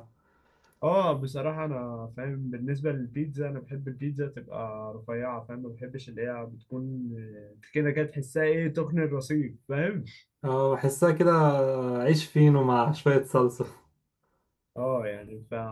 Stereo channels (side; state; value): both; identical; correlation 1.00